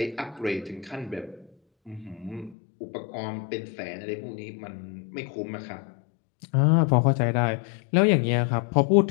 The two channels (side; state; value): right; drops out; at 2.6 s